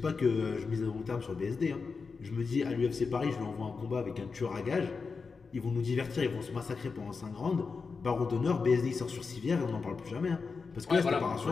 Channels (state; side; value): quieter; right; 4.8 dB